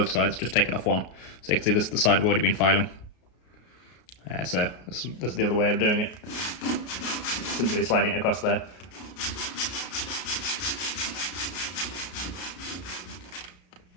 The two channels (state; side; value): late; right; 33 ms